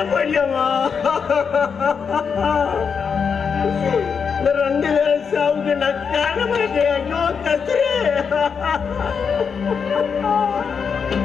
போயிடலாமா? இந்த 2 பேரும் சாவுக்கு நான் காண மாட்டேன். ஐயோ கஸ்தூரி,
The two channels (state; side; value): quieter; right; 6.2 dB